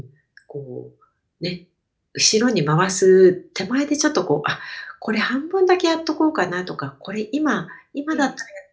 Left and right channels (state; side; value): identical; both; correlation 1.00